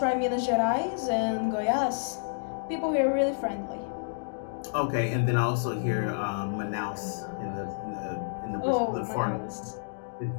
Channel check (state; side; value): silent; right; digital silence